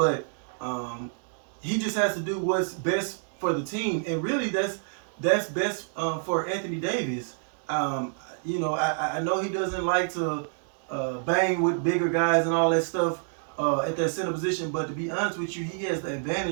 he just has to do what's best for the team, and really that's best for Anthony Davis. You know, I know he doesn't like to bang with bigger guys and all that stuff at that center position, but to be honest with you, he has the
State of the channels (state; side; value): silent; left; digital silence